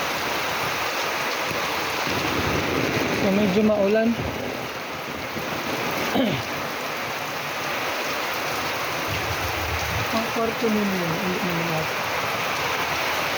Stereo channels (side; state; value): both; identical; correlation 1.00